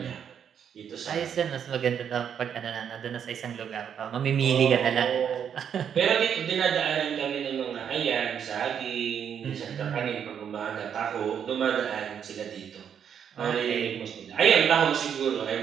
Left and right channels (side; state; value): left; quieter; 8.2 dB